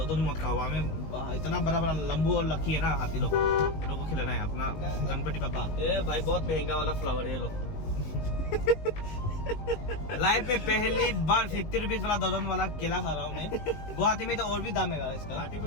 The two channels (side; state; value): right; late; 19 ms